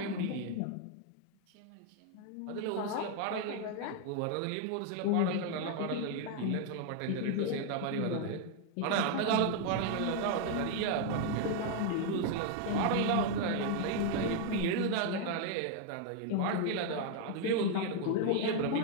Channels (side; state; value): both; different; correlation 0.00